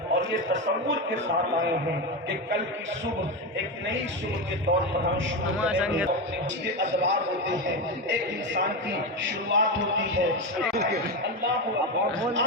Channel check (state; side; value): normal; both; correlation 0.15